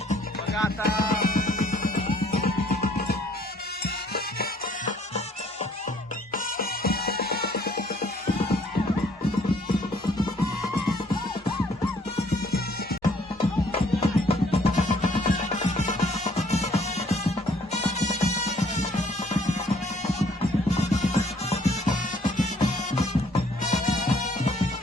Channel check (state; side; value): normal; both; correlation 0.62